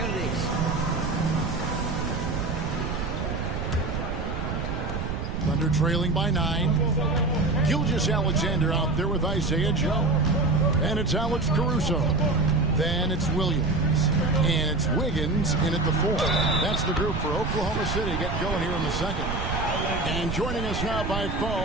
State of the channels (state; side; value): noise; right; rumble, 3 dB below the sound